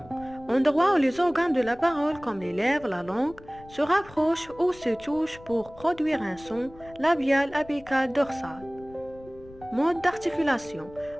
endroit où les organes de la parole comme les lèvres, la langue, se rapprochent ou se touchent pour produire un son labial, apical, dorsal. Mode d'articulation,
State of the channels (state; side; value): noise; left; rumble, 21 dB below the sound